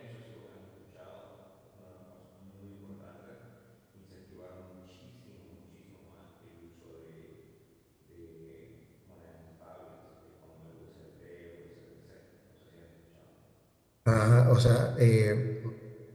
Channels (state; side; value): identical; both; correlation 1.00